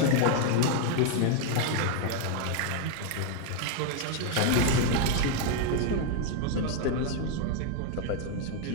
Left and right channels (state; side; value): different; both; correlation 0.01